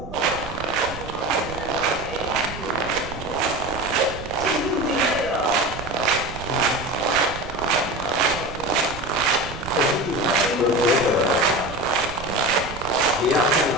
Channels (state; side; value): noise; right; rumble, 12 dB below the sound